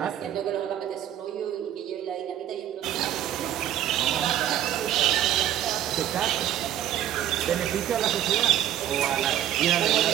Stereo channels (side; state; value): left; quieter; 11.4 dB